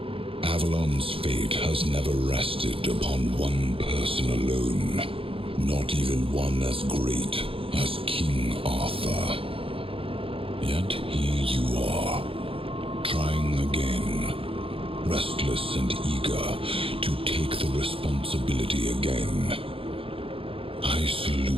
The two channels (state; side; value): late; left; 0.27 ms